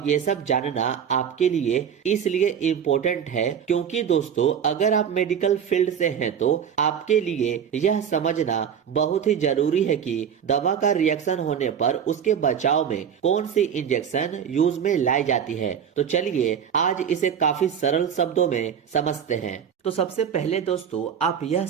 ये सब जानना आपके लिए इसलिए इम्पोर्टेंट है क्योंकि दोस्तों अगर आप मेडिकल फील्ड से हैं तो आपके लिए यह समझना बहुत ही जरूरी है कि दवा का रिएक्शन होने पर उसके बचाव में कौन सी इंजेक्शन यूज में लाई जाती है। तो चलिए आज इसे काफी सरल शब्दों में समझते हैं। तो सबसे पहले दोस्तों आप यह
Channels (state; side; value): quieter; left; 8.1 dB